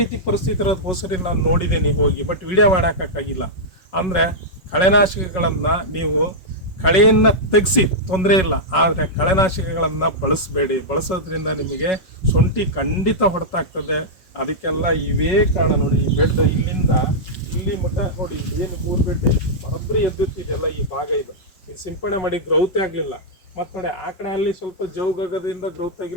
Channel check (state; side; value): late; right; 5.4 ms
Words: ರೀತಿ ಪರಿಸ್ಥಿತಿ ಇರೋದು ಹೋಸರಿ ನಾನು ನೋಡಿದ್ದೀನಿ ಹೋಗಿ, ಬಟ್ ವಿಡಿಯೋ ಮಾಡೋಕ್ಕಾಗಿಲ್ಲ. ಅಂದರೆ ಕಳೆನಾಶಕಗಳನ್ನು ನೀವು ಕಳೆಯನ್ನು ತೆಗೆಸಿ ತೊಂದರೆ ಇಲ್ಲ, ಆದರೆ ಕಳೆನಾಶಕಗಳನ್ನು ಬಳಸಬೇಡಿ. ಬಳಸೋದ್ರಿಂದ ನಿಮಗೆ ಶುಂಠಿ ಖಂಡಿತ ಹೊಡೆತಾಗ್ತದೆ. ಅದಕ್ಕೆಲ್ಲ ಇವೇ ಕಾರಣ. ನೋಡಿ, ಈ ಬೆಡ್ ಇಲ್ಲಿಂದ ಇಲ್ಲಿ ಮಟ್ಟ ನೋಡಿ, ಏನು 3 ಬೆಡ್ ಬರೋಬ್ಬರಿ ಎದ್ದುತ್ತಿದೆಯಲ್ಲ, ಈ ಭಾಗ ಇದು ಸಿಂಪಡಣೆ ಮಾಡಿ ಗ್ರೌತ್ ಆಗಲಿಲ್ಲ. ಮತ್ತು ನೋಡಿ, ಆ ಕಡೆ ಅಲ್ಲಿ ಸ್ವಲ್ಪ ಜೌಗದಿಂದ ಗ್ರೌತ್